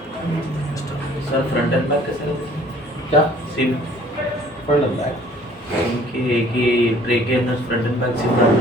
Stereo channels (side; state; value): both; normal; correlation 0.55